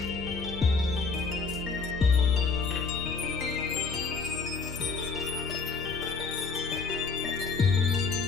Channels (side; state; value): right; quieter; 4.6 dB